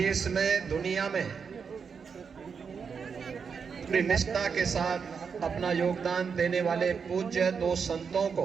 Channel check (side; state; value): left; quieter; 6.1 dB